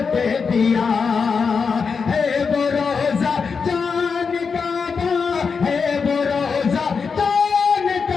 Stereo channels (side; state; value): right; quieter; 5.4 dB